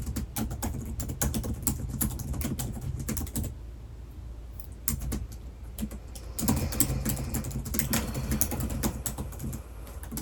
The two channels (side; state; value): both; identical; correlation 1.00